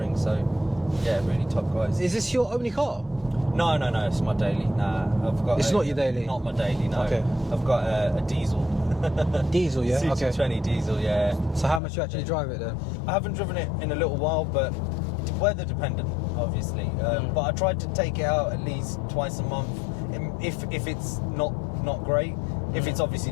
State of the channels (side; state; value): right; drops out; at 11.8 s